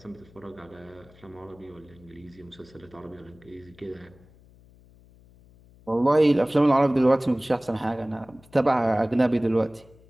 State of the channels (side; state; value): left; noise; hum, 26 dB below the sound